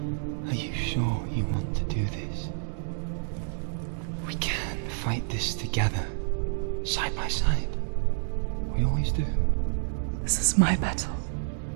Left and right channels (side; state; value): left; silent; digital silence